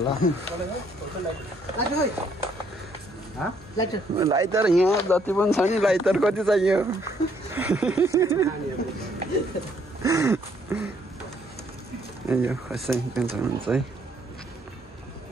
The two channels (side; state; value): both; normal; correlation 0.68